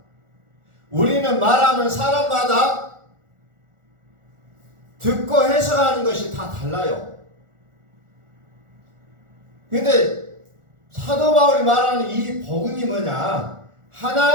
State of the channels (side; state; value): left; late; 1.4 ms